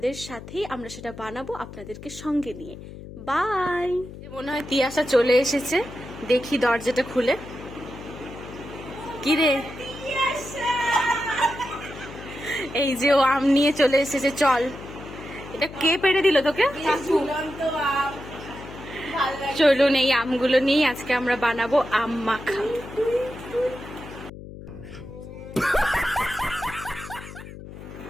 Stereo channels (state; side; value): noise; left; hum, 14 dB below the sound